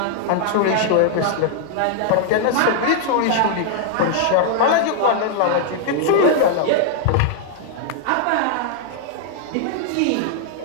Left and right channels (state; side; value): different; both; correlation -0.01